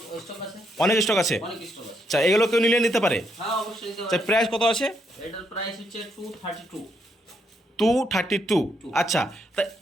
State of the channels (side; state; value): both; normal; correlation 0.76